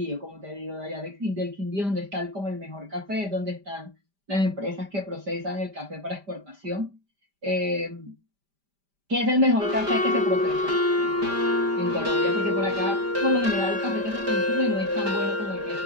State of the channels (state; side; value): late; left; 5.0 ms